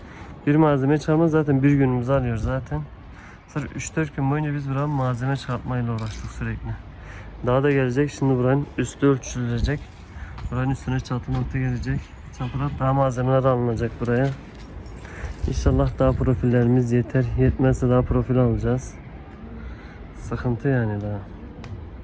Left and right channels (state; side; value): identical; both; correlation 1.00